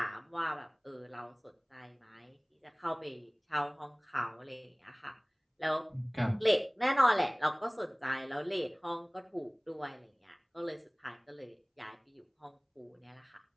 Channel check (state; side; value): identical; both; correlation 1.00